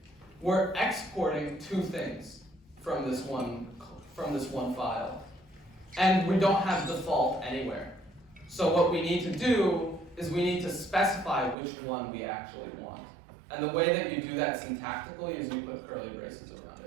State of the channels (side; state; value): left; drops out; at 11.6 s